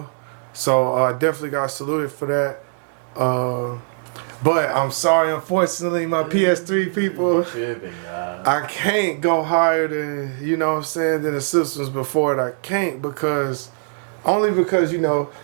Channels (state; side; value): silent; left; digital silence